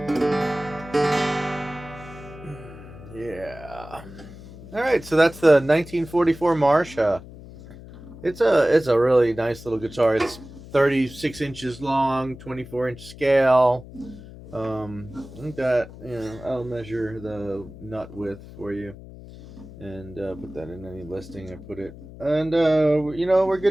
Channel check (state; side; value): noise; left; hum, 16 dB below the sound